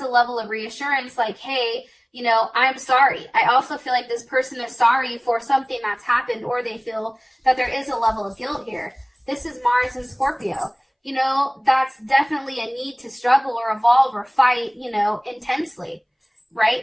a level of reassurance, like, hey, you know, I'm sorry. I also feel like this person is sorry for something that's happened, or they feel that there is a level of guilt here. This is Mars and Scorpio. You know, that's definitely a need to struggle or evolve or fight, you know, intensely,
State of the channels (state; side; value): identical; both; correlation 1.00